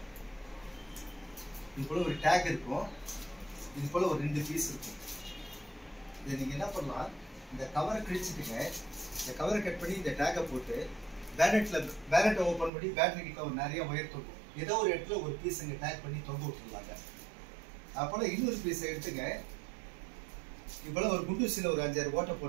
இது போல் ஒரு டேக் இருக்கும். இது போல் ஒரு 2 பீஸ் இருக்கும். இதை நீங்கள் என்ன பண்ணலாம், இந்த கவரை கிழிச்சிட்டுங்க. இந்த கவரை கட் பண்ணி இந்த டேக்கை போட்டு பேனட்டை ஓப்பன் பண்ணி பேட்டரி கிட்ட ஒரு நிறைய ஒயர் தொங்கும். ஏதோ ஒரு இடத்துல ஒரு பீஸ் இங்கே டேக் பண்ணி தொங்க விட்டுருலாங்க. அப்போல இன்னொரு பீஸை எடுத்துங்க. இப்போல ஒரு குண்டூசியில் ஒரு 5-6 ஓட்டை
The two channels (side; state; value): left; drops out; at 12.7 s